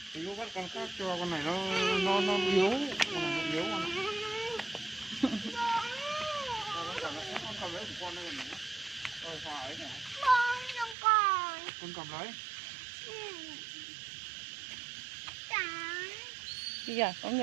con khác cho con này nó yếu, con này nó yếu con này. Con cầm lấy của con đây này. Rồi hòa ấy này. Con cầm lấy. Kìa, có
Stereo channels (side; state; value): left; drops out; at 11.0 s